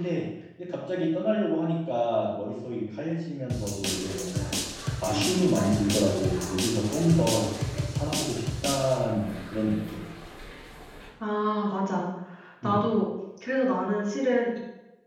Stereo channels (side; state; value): both; identical; correlation 1.00